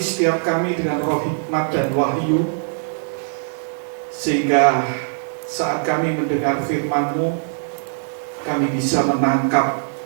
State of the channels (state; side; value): silent; left; digital silence